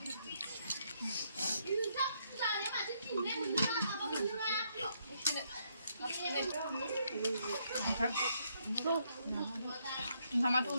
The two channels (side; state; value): both; inverted; correlation -0.74